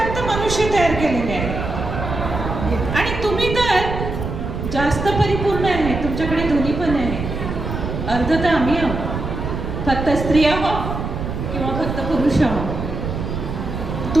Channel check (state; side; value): noise; right; rumble, 5 dB below the sound